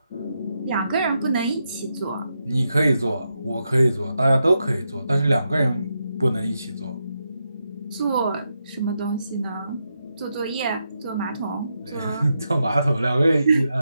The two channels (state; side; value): inverted; both; correlation -0.84